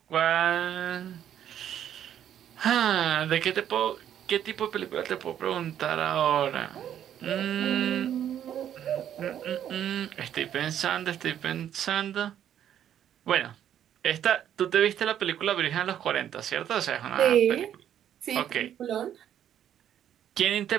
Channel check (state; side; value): quieter; left; 10.2 dB